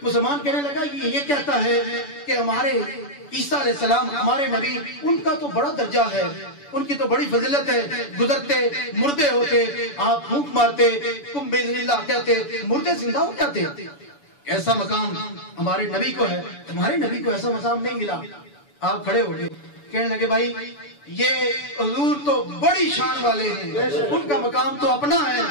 مسلمان کہنے لگا یہ کہتا ہے کہ ہمارے عیسیٰ علیہ السلام، ہمارے نبی، ان کا تو بڑا درجہ ہے، ان کی تو بڑی فضیلت ہے، گزرتے مردے ہوتے، آپ پھونک مارتے، کم باذن اللہ کہتے، مردے زندہ ہو جاتے۔ ایسا مقام ہمارے نبی کو ہے، تمہارے نبی کو ایسا مقام نہیں ملا۔ آپ کھڑے ہو گئے، کہنے لگے بھائی یہ حضور تو بڑی شان والے ہیں، ان کا مقام تو اپنا ہے،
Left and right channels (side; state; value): right; late; 7.0 ms